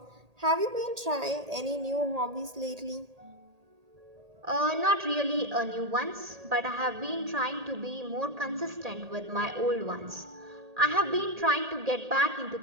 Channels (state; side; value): late; left; 1.8 ms